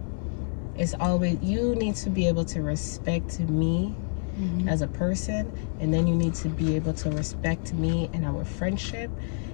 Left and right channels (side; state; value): right; silent; 60 dB below the other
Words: It's always, you need to be able to respect me as a person, and then you need to be able to respect me in our friendship